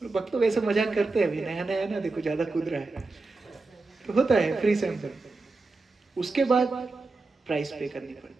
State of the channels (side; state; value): left; quieter; 3.6 dB